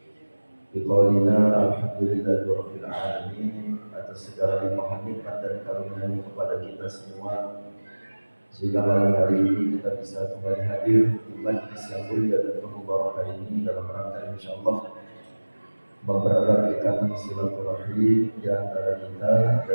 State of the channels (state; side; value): inverted; both; correlation -1.00